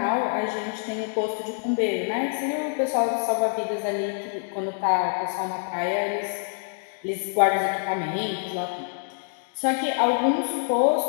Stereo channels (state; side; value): silent; right; digital silence